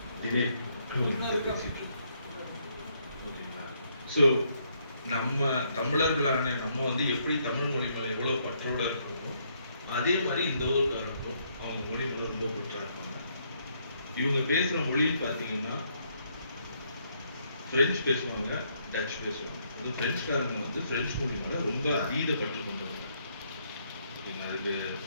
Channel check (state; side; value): inverted; both; correlation -0.72